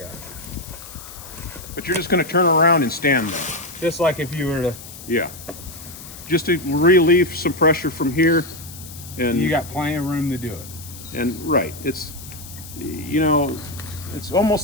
but you're just going to turn around and stand there. Just like if you were to, Yeah. Just to relieve some pressure from here. And you got plenty of room to do it. And right, it's it's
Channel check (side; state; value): left; noise; hiss, 15 dB below the sound